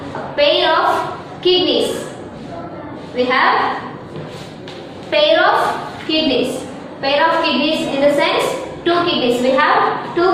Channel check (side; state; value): both; identical; correlation 1.00